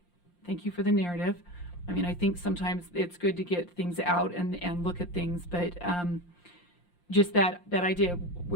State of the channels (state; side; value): late; right; 5.7 ms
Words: thank you for the narrative. I mean, I think sometimes it's good to get things out and look at things, but just that idea,